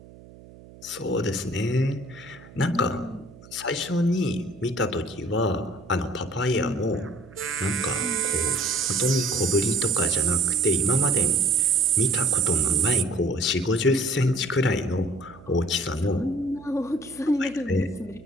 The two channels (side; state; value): right; noise; hum, 21 dB below the sound